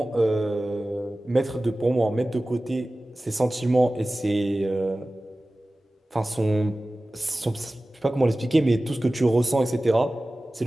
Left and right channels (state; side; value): normal; both; correlation 0.97